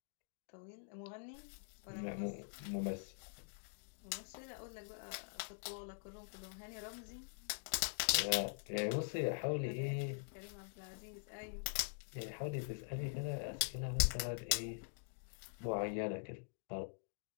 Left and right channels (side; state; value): right; silent; digital silence